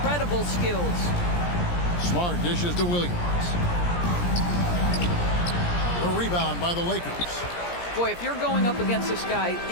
skills. Smart dishes to Williams. A rebound by the Lakers. Boy, if you're going up against this guy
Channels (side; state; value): right; late; 17 ms